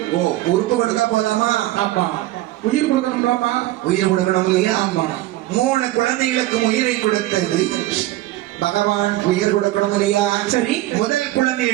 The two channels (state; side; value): quieter; left; 16.1 dB